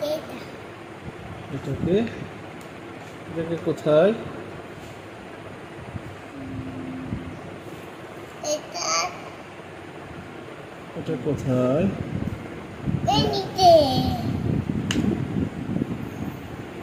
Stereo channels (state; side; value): identical; both; correlation 1.00